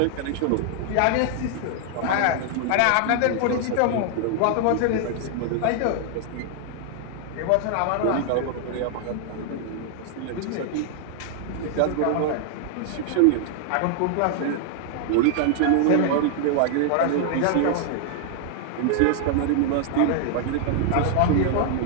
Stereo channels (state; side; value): different; both; correlation 0.00